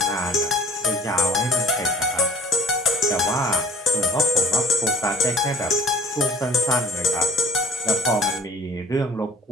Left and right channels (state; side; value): normal; both; correlation 0.50